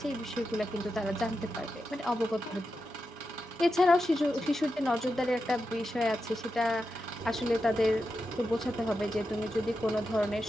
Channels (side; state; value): both; normal; correlation 0.88